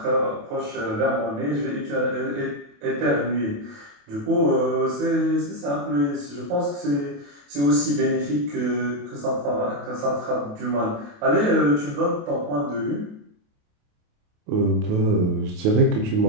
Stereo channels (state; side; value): late; left; 28 ms